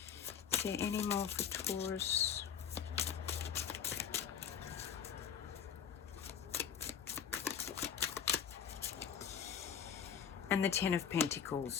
Is there any more for Taurus? And the Ten of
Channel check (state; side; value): quieter; right; 7.9 dB